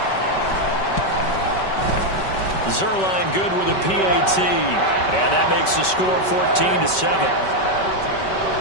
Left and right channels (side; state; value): right; late; 5.2 ms